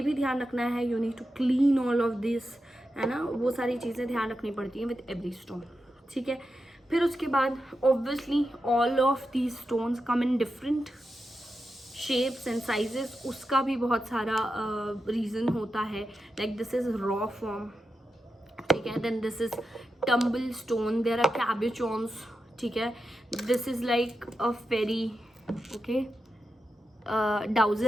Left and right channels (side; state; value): both; normal; correlation 0.89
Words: भी ध्यान रखना है, you need to clean all of this, है ना, वो सारी चीज़ें ध्यान रखनी पड़ती हैं विद एवरी स्टोन, ठीक है। फिर उसके बाद obviously all of these stones come in different shapes and sizes, उसका भी बहुत सारा रीज़न होता है, like this is raw form, ठीक है। Then this is tumble stone, there are cabochons, ठीक है। This is like a fairy, okay,